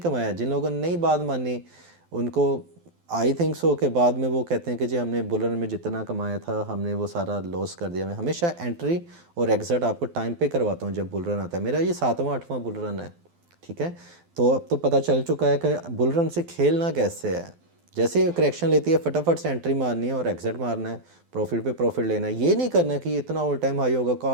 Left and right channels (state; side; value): late; left; 12 ms